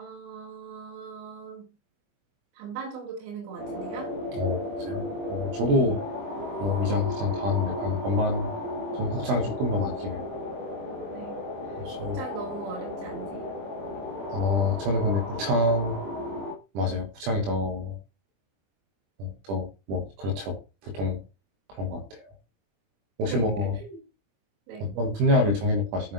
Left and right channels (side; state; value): left; late; 20 ms